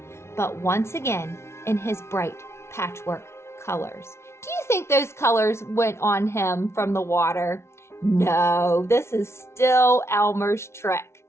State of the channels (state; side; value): late; right; 0.13 ms